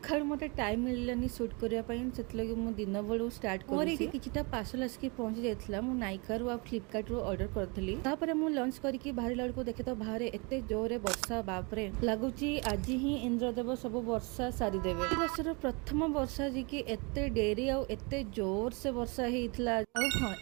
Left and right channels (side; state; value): left; quieter; 30.4 dB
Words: मते टाइम मिललानी शूट करिया पई सेतलगे मु दिन बळू स्टार्ट करी कि किछटा पार्सल आसकी पहुंच जायतला। मु नाइका रु आ फ्लिपकार्ट रु ऑर्डर करथली। तापरे मु लॉन्च करिकि बाहर लड़को देखे तो बाहर एते जोरे वर्षा, बाप रे लागुची आज ही इंद्रदेव सब वर्षा सारी देबे। ई वर्षर प्रथम वर्षा जी कि एते डेरी आ एते जोर से वर्षा हेइतला। आ हां